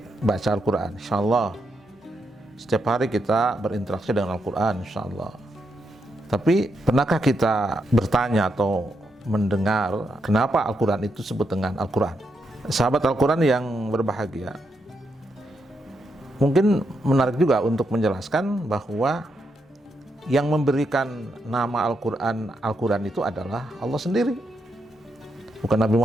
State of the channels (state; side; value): normal; both; correlation 0.82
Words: baca Al-Quran, insya-Allah. Setiap hari kita berinteraksi dengan Al-Quran, insya-Allah. Tapi pernahkah kita bertanya atau mendengar kenapa Al-Quran itu disebut dengan Al-Quran? Sahabat Al-Quran yang berbahagia, mungkin menarik juga untuk menjelaskan bahwa yang memberikan nama Al-Quran itu adalah Allah sendiri, bukan Nabi